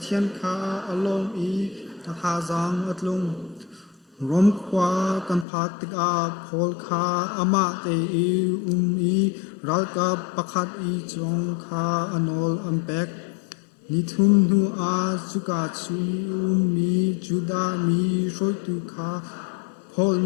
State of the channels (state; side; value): drops out; right; at 5.5 s